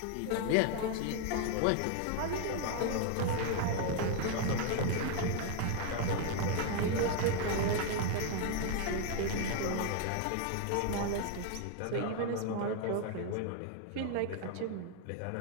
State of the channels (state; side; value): different; both; correlation 0.00